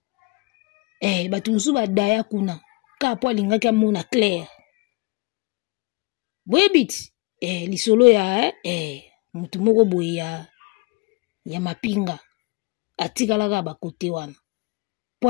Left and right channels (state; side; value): quieter; right; 26.6 dB